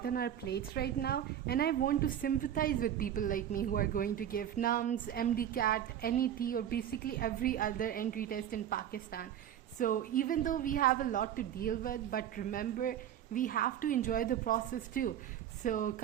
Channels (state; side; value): quieter; left; 10.3 dB